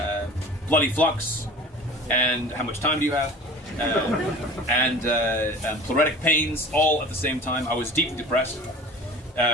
bloody flux. And how much time do you have? And pleuritic pains, all at the same time. I was deeply depressed.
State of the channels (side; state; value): both; normal; correlation 0.40